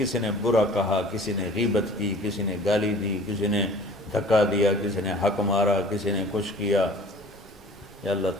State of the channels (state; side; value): normal; both; correlation 0.47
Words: نے برا کہا، کسی نے غیبت کی، کسی نے گالی دی، کسی نے دھکا دیا، کسی نے حق مارا، کسی نے کچھ کیا، یا اللہ